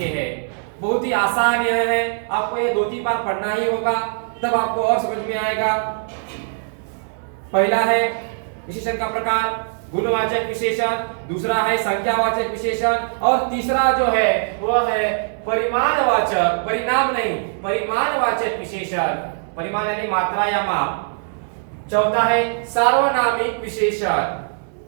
हैं। बहुत ही आसान यह है, आपको ये 2-3 बार पढ़ना ही होगा, तब आपको और समझ में आएगा। पहला है विशेषण का प्रकार गुणवाचक विशेषण, दूसरा है संख्यावाचक विशेषण और तीसरा जो है वह है परिमाणवाचक, परिणाम नहीं, परिमाणवाचक विशेषण, परिमाण यानी मात्रा या माप। चौथा है सार्वनामिक विशेषण।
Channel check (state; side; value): silent; left; digital silence